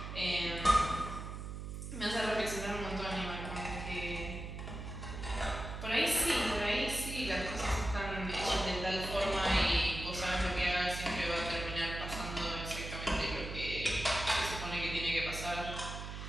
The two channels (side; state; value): right; noise; hum, 7 dB below the sound